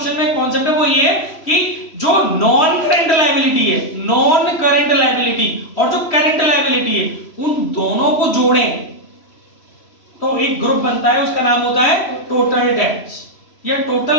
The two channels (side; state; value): right; late; 3.0 ms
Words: में कॉन्सेप्ट है वो ये है कि जो नॉन करंट लायबिलिटी है, नॉन करंट लायबिलिटी और जो करंट लायबिलिटी है, उन दोनों को जोड़ें तो एक ग्रुप बनता है, उसका नाम होता है टोटल डेट्स या